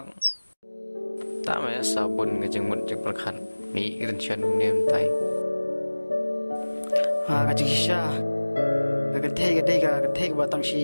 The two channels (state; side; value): inverted; both; correlation -1.00